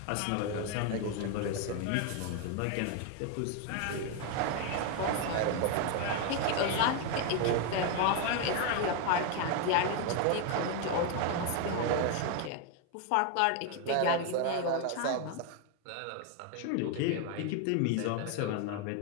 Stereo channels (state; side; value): different; both; correlation 0.01